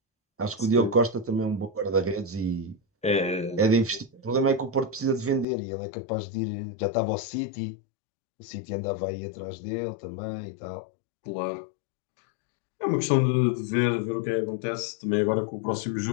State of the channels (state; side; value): drops out; right; at 5.5 s